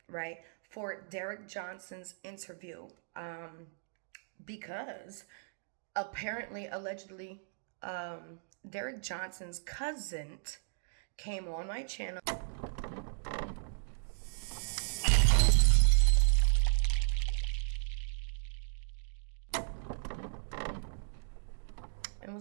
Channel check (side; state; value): left; silent; digital silence